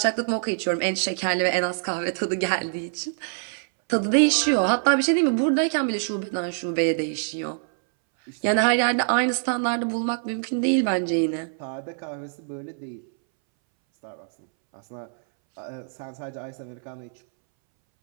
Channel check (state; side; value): silent; left; 62 dB below the other